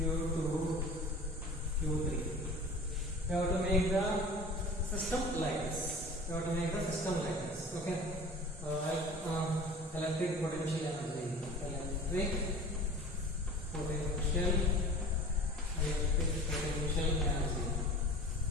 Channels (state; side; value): normal; both; correlation 0.41